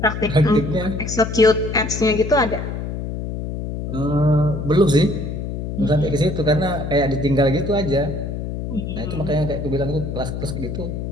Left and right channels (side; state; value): left; noise; hum, 5 dB below the sound